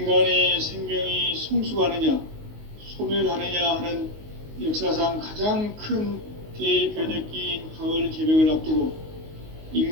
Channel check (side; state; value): left; late; 19 ms